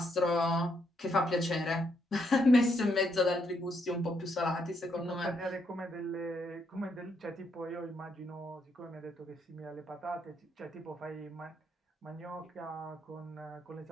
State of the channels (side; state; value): both; normal; correlation 0.76